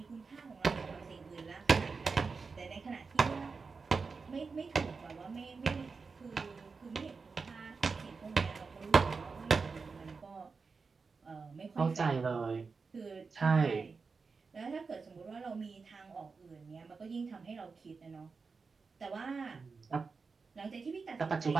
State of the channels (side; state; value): left; quieter; 4.7 dB